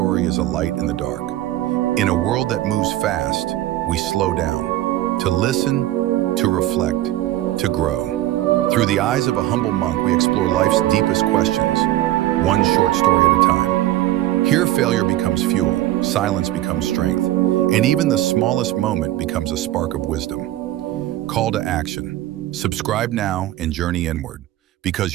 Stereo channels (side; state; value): left; quieter; 14.7 dB